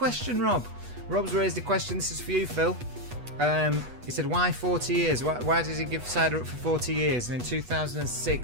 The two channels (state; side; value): late; left; 8.2 ms